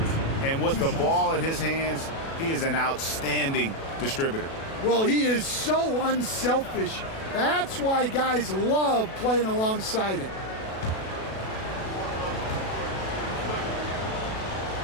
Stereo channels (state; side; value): late; right; 37 ms